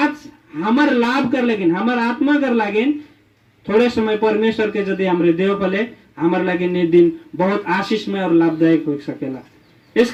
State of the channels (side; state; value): both; identical; correlation 1.00